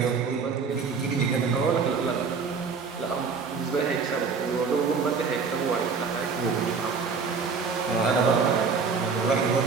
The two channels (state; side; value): quieter; left; 5.3 dB